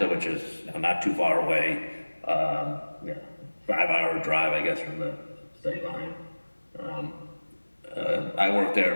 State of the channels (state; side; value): inverted; both; correlation -1.00